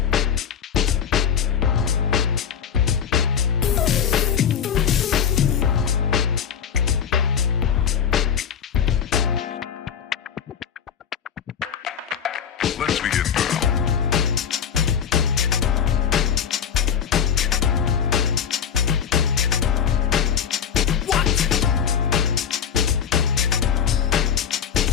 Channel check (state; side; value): quieter; right; 7.8 dB